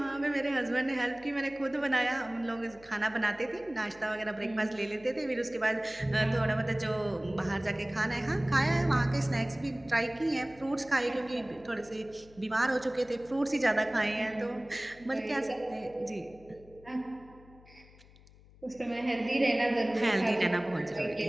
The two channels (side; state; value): left; noise; hum, 24 dB below the sound